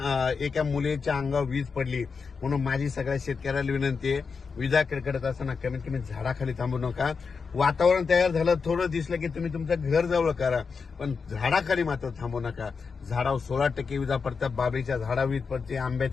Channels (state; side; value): quieter; right; 5.3 dB